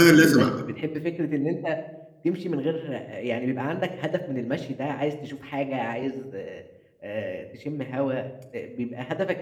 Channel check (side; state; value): both; identical; correlation 1.00